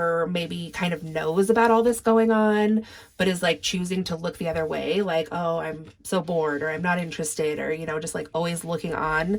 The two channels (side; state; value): both; identical; correlation 1.00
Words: maybe kind of knows about all this going on, but is like choosing to look the other way, like, oh, I'm so bored, or I'm not interested, or, you know, just like always looking